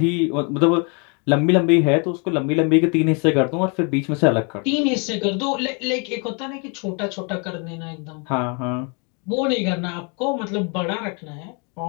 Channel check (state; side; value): quieter; right; 34.9 dB